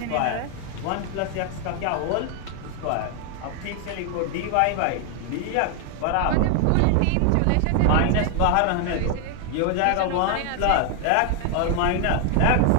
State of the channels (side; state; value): both; different; correlation 0.00